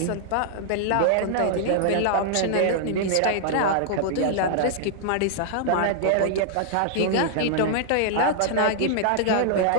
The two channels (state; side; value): different; both; correlation -0.01